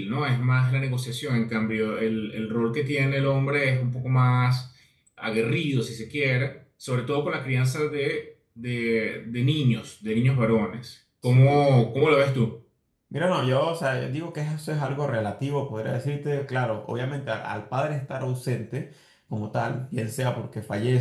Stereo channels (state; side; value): identical; both; correlation 1.00